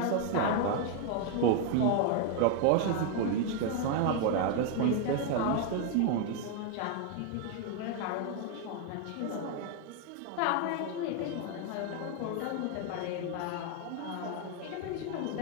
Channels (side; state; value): both; different; correlation 0.01